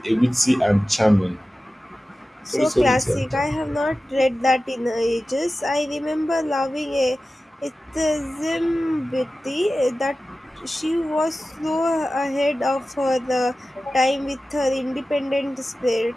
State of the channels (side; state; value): both; normal; correlation 0.95